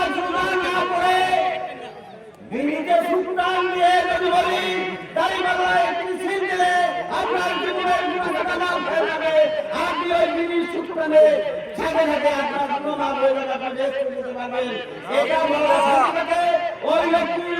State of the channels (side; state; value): both; identical; correlation 1.00